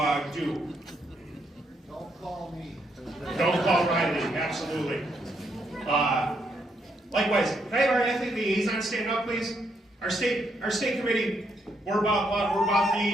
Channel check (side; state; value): both; normal; correlation 0.76